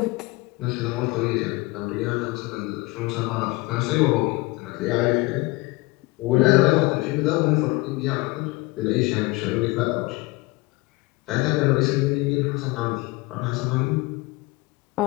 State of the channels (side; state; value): right; quieter; 23.2 dB